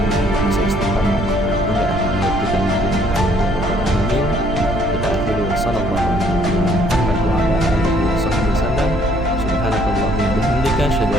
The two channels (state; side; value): noise; right; rumble, 6 dB below the sound